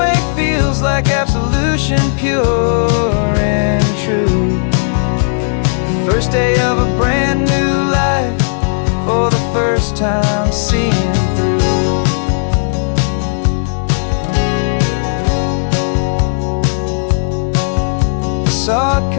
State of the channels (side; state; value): right; silent; digital silence